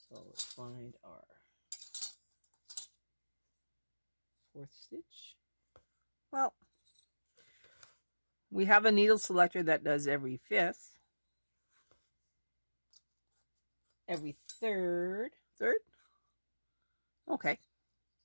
let's find our 4th stitch. Well, we have a needle selector that does every 5th, every 3rd, okay,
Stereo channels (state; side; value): inverted; both; correlation -1.00